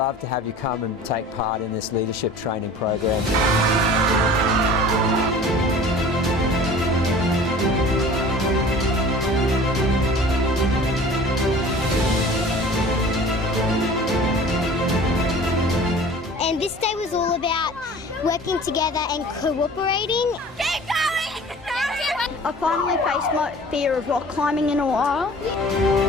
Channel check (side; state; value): both; normal; correlation 0.44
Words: to have you come and take part in this leadership training program. And this day was all about working together and cooperating. Keep going! I finally faced my fear of rock climbing in a while.